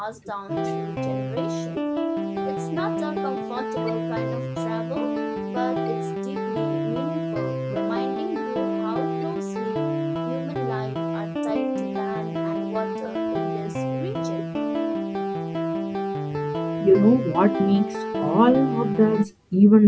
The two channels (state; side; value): identical; both; correlation 1.00